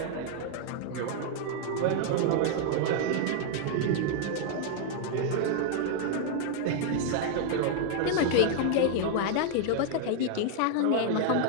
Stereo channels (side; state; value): both; different; correlation 0.00